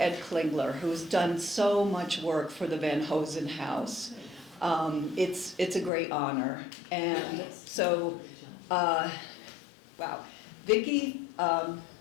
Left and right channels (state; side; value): drops out; right; at 5.9 s